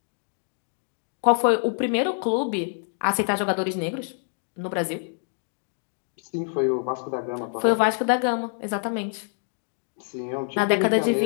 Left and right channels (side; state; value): right; silent; 61 dB below the other